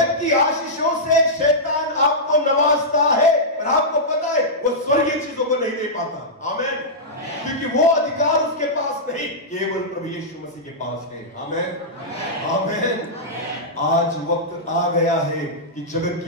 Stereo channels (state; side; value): normal; both; correlation -0.11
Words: की आशीषों से शैतान आपको नवाजता है, और आपको पता है वो स्वर्गीय चीजों को नहीं दे पाता। आमीन। क्योंकि वो अधिकार उसके पास नहीं, केवल प्रभु यीशु मसीह के पास है। आमीन। आमीन। आज वक्त आ गया है कि जगत